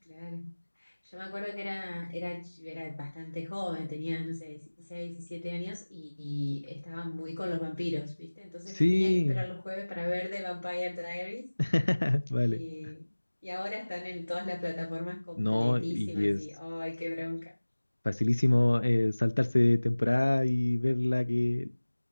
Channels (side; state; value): both; inverted; correlation -1.00